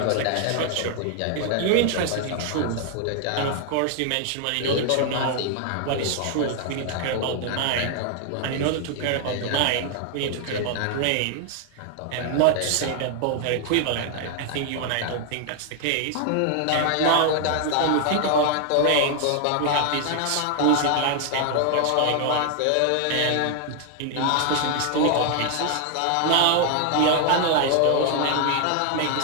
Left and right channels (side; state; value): both; different; correlation 0.00